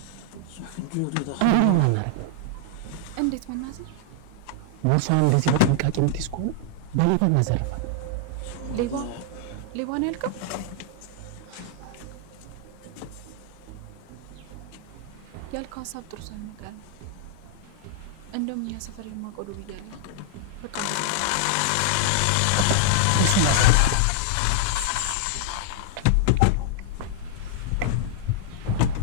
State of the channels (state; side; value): different; both; correlation -0.01